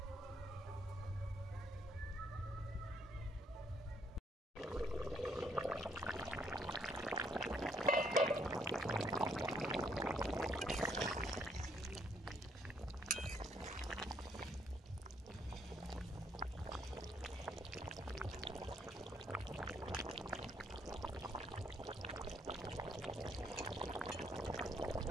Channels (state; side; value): normal; both; correlation 0.69